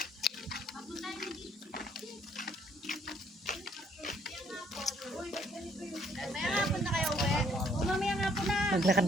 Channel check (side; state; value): both; normal; correlation 0.66